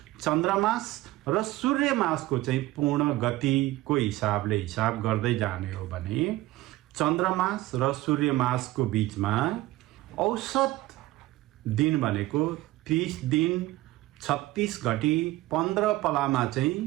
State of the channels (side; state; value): left; quieter; 17.5 dB